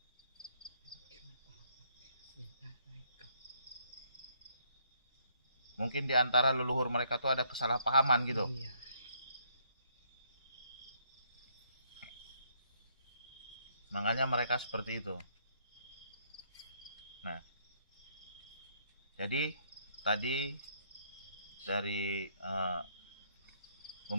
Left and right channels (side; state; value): both; inverted; correlation -0.69